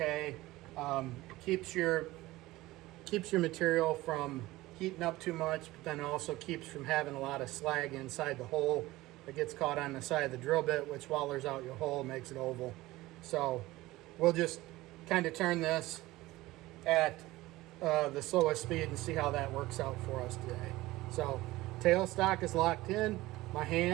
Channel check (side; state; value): left; quieter; 18.3 dB